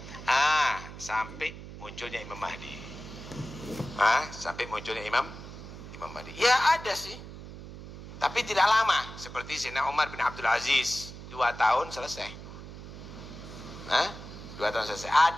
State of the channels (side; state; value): right; noise; hum, 13 dB below the sound